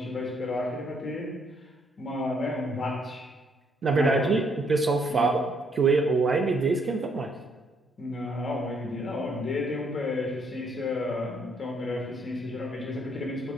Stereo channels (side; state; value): both; normal; correlation 0.70